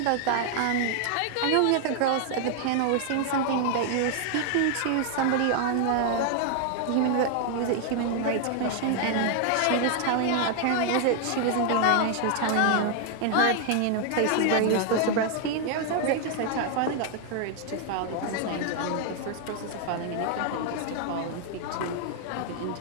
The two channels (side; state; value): both; different; correlation 0.00